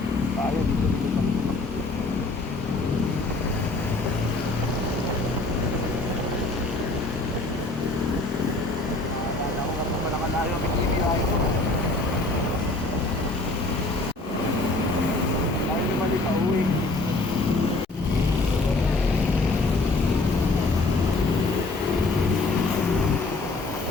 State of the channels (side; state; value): right; quieter; 3.1 dB